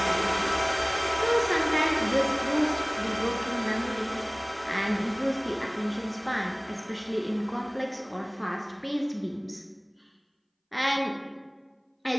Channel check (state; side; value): identical; both; correlation 1.00